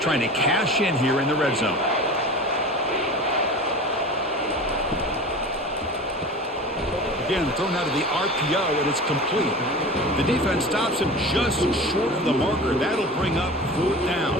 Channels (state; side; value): normal; both; correlation 0.35